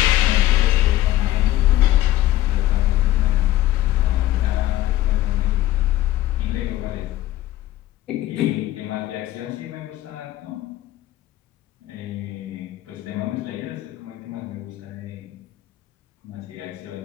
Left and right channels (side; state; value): right; quieter; 14.6 dB